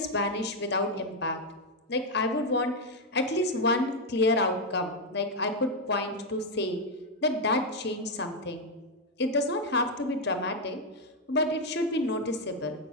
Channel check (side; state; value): both; normal; correlation 0.02